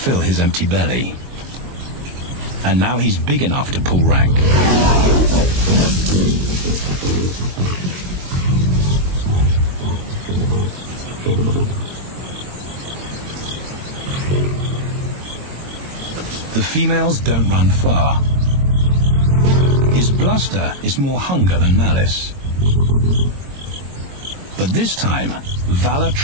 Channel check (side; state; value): left; late; 22 ms